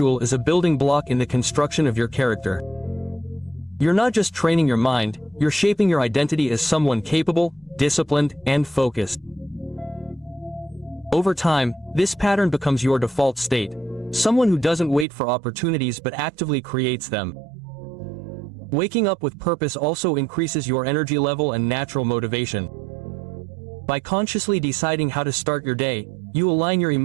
is a building block in the construction of your character. You're not just training your mind, you're shaping your identity as someone capable, disciplined, and focused. Over time, this pattern becomes your default state. Someone who doesn't wait for opportunities but actively creates them. Waking up with purpose also increases your energy level and natural motivation. By consciously deciding how to start your day, you align your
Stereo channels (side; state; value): left; drops out; at 15.1 s